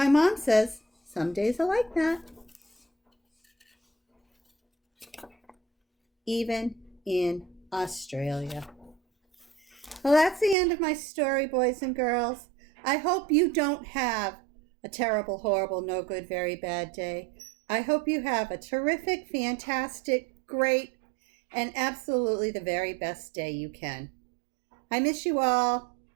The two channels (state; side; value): drops out; left; at 10.6 s